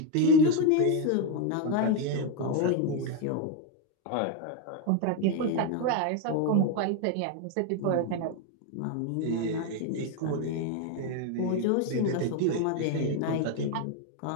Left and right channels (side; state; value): both; different; correlation 0.02